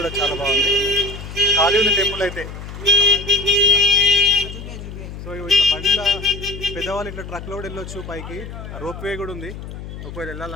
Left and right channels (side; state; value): left; noise; hum, 11 dB below the sound